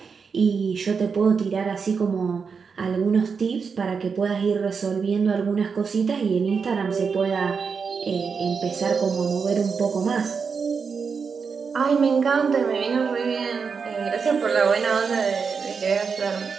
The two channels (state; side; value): quieter; left; 5.6 dB